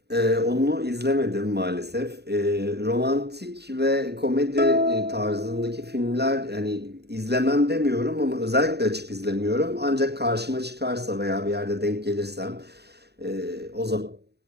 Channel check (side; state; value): left; late; 0.48 ms